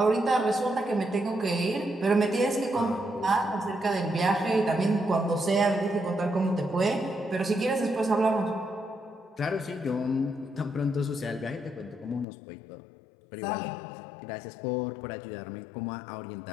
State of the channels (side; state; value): right; drops out; at 12.2 s